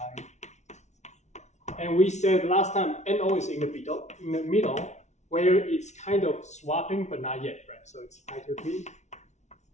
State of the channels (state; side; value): late; right; 0.33 ms